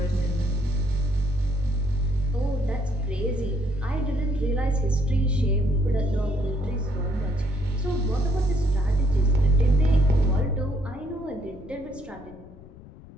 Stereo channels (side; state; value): left; noise; rumble, 19 dB below the sound